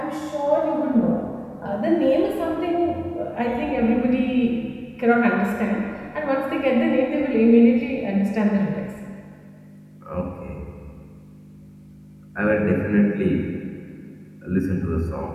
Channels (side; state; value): both; identical; correlation 1.00